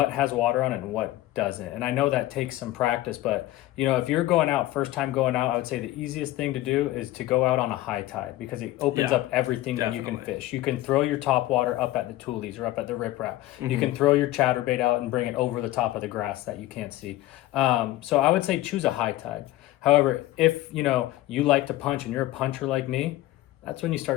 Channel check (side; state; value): right; quieter; 16.1 dB